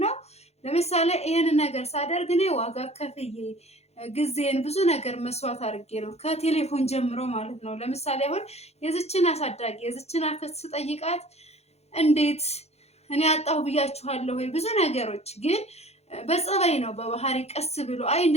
ለምሳሌ ይሄን ነገር ሳደርግ እኔ ዋጋ ከፍዬ ጊዜን ብዙ ነገር መስዋዕት አድርጌ ነው ከቴሌፎን ጀምሮ ማለት ነው። ለምሳሌ አሁን የዝችን አሳዳጊ የዝችን አክስት ስጠይቃት እንዴት እኔ አጣሁ ብያችኋለሁ ወይ ብዙ ነገሮች፣ ግን በጸባይ ነው በባህሪ ቀስ ብሎ አይ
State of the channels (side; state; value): right; late; 0.31 ms